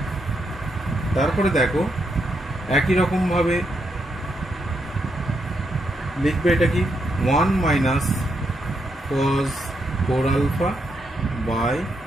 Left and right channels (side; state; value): both; normal; correlation 0.80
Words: তারপরে দেখো একই রকম ভাবে লিখবে, এটা কি 1 minus cos 4 alpha by